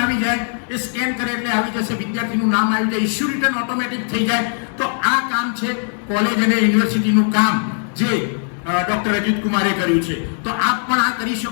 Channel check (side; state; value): right; silent; 59 dB below the other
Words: આવી જાય, એ સ્કેન કરે એટલે આવી જશે, વિદ્યાર્થીનું નામ આવી જાય, ઇશ્યુ રિટર્ન ઓટોમેટિક થઈ જાય. તો આ કામ છે કોલેજ અને યુનિવર્સિટીનું કામ જે ડોક્ટર અજીત કુમારે કર્યું છે. તો આપ પણ આ કરી